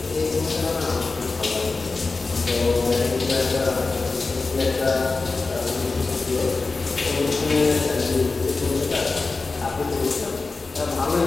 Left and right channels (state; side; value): quieter; right; 3.8 dB